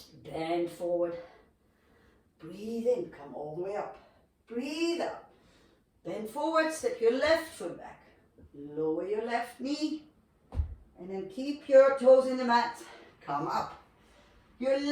Bend forward. Breathe in, come all the way up. Breathe out. Bend forward, step your left foot back. Lower your left knee. And then keep your toes in the mat. Come up. Your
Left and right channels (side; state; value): both; identical; correlation 1.00